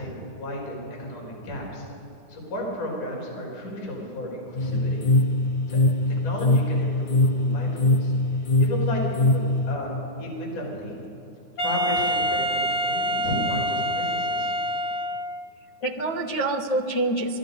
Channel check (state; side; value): late; right; 9.6 ms